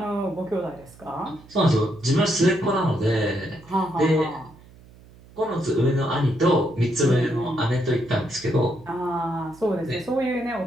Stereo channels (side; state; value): right; noise; hum, 23 dB below the sound